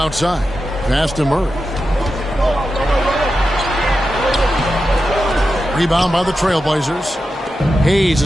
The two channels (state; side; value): normal; both; correlation 0.90